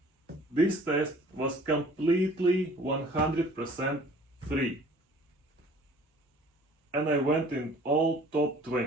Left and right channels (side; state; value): both; normal; correlation 0.51